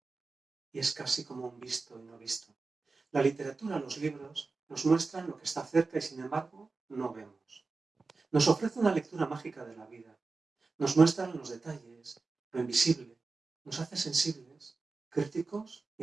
y es casi como un visto y no visto. La literatura, los libros, nos muestran lo que está cerca y sin embargo no vemos. Nos ofrece una lectura mágica de la vida. Nos muestran los detalles, lo invisible. Nos hace sensibles, críticos y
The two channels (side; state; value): left; quieter; 4.0 dB